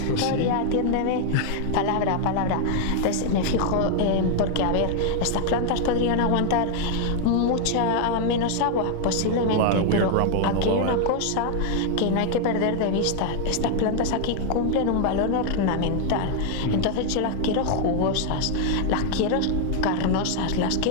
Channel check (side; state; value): both; different; correlation 0.00